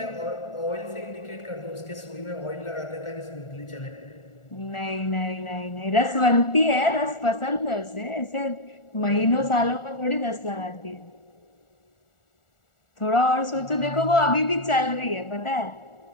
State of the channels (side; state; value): right; late; 1.4 ms